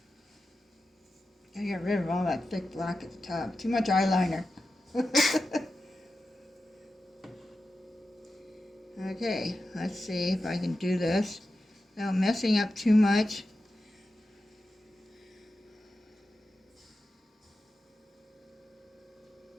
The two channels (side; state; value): both; normal; correlation 0.92